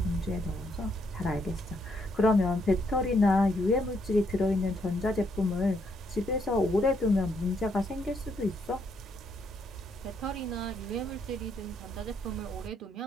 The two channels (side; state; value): both; normal; correlation 0.74